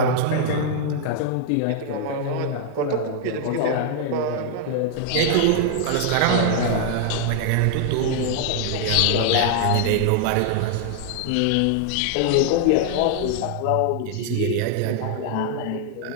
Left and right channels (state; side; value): different; both; correlation 0.00